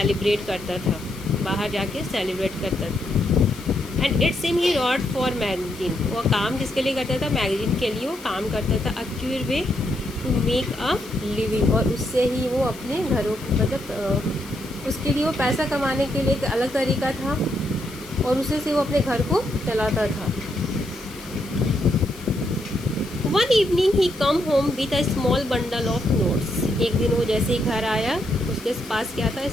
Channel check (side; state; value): left; noise; hiss, 19 dB below the sound